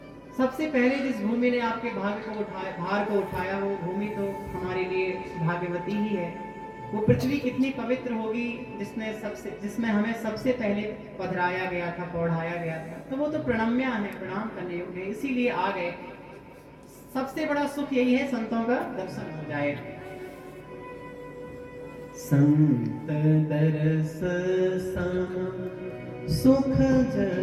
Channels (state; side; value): identical; both; correlation 1.00